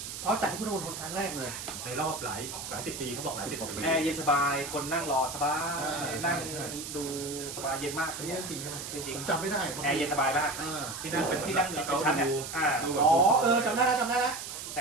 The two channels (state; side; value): noise; right; hiss, 8 dB below the sound